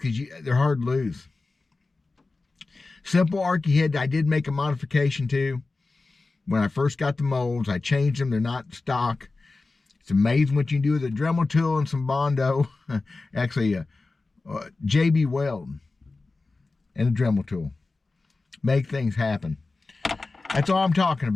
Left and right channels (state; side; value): quieter; right; 3.6 dB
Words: they're hard to lose. Simple Arky head, I did make a modification to. When I first got the molds, I changed them. They're not stock. It's amazing what you can do with a Dremel tool and some Bondo. Actually, JB Weld and a Dremel tool. Make things happen. That's all I'm talking